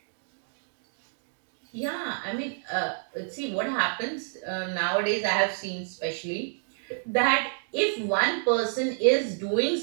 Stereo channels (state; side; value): silent; left; digital silence